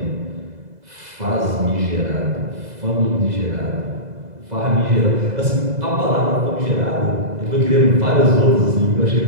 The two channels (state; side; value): late; left; 2.0 ms